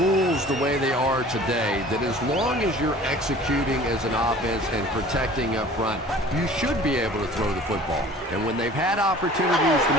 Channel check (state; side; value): normal; both; correlation 0.46